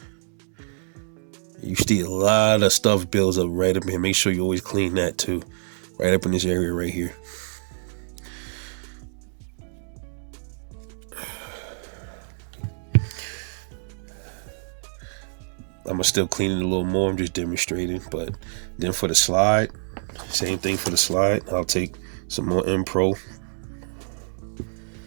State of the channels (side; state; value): left; silent; digital silence